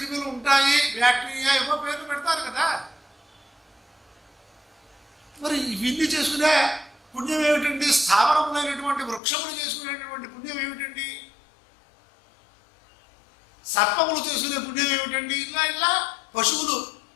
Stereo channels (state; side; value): drops out; right; at 9.2 s